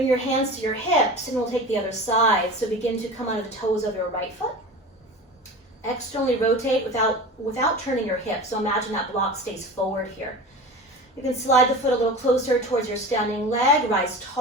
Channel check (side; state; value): both; normal; correlation 0.33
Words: your hands to your hips, and we'll take the other side. So begin to come under the toes of your right foot. Externally rotate without turning your hips. So imagine that block stays forward here. You can slide the foot a little closer towards your standing leg. Rise